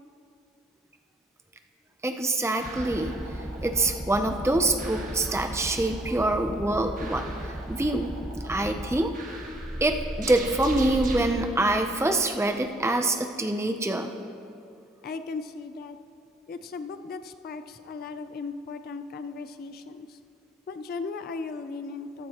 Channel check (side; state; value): both; normal; correlation 0.64